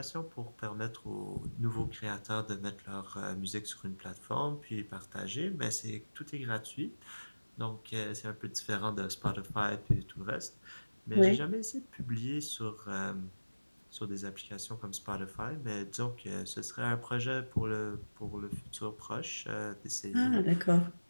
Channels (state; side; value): inverted; both; correlation -1.00